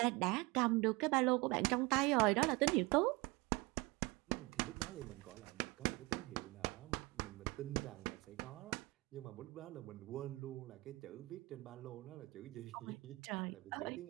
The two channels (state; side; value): quieter; left; 23.8 dB